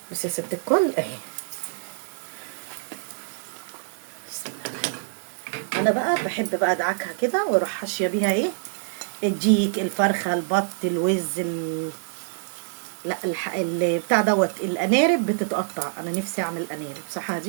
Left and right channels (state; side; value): silent; left; digital silence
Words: بصي يا ست الكل اهي. بسم الله. انا بقى بحب بقى ادعكها كده واروح حاشيه بيها ايه الديك الفرخه البط الوز لا بتاع دوت الانارب بتتقطع. انا نفسي اعمل انارب، صح